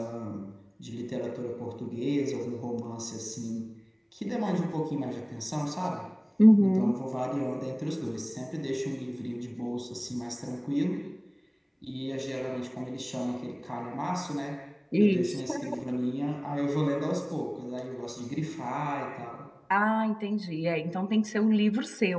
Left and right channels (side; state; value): both; identical; correlation 1.00